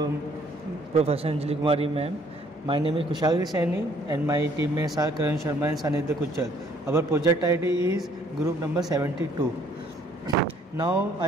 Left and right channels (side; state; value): both; normal; correlation 0.62